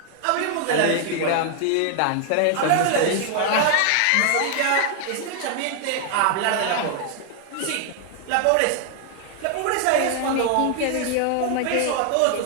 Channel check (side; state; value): both; different; correlation 0.00